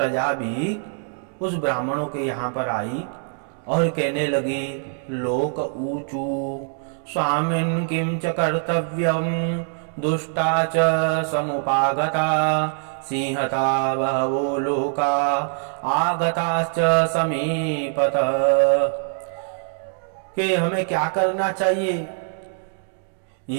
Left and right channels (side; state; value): left; silent; 60 dB below the other